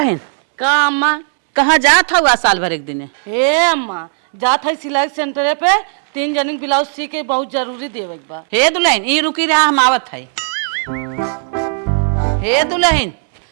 का अम्मा? कहाँ जात हुआ साल भर एक दिन? हे अम्मा, जात है सिलाई सेंटर पे 3 जनी ब्लाउज सी के बहुत जरूरी देवे के बा। हे दुल्हन ई रुकी रहा हम आवत है। हे दुल्हन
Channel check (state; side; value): silent; left; digital silence